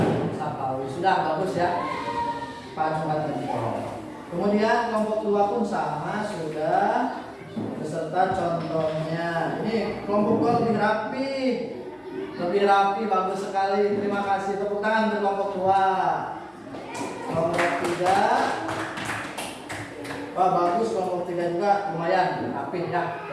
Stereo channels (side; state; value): both; identical; correlation 1.00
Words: Sapawi. Sudah bagus ya. Pak Jumat Jempol. Kemudian kelompok 2 pun sama sudah beserta contohnya. Ini kelompok 2 lebih rapi. Lebih rapi, bagus sekali. Terima kasih. Tepuk tangan untuk kelompok 2. Kelompok 3. Wah, bagus kelompok 3 juga lumayan rapi ya.